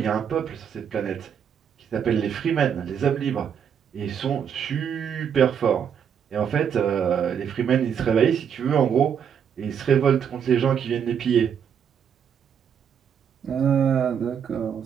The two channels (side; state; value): left; quieter; 7.9 dB